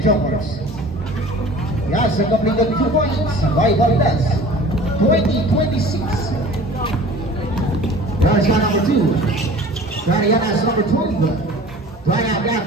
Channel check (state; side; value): normal; both; correlation 0.44